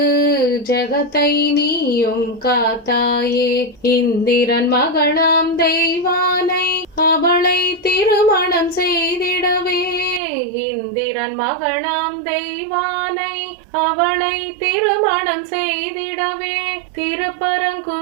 ஜகத்தை நீயும் காத்தாயே. இந்திரன் மகளாம் தெய்வானை அவளை திருமணம் செய்திடவே. இந்திரன் மகளாம் தெய்வானை அவளை திருமணம் செய்திடவே.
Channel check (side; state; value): left; drops out; at 10.2 s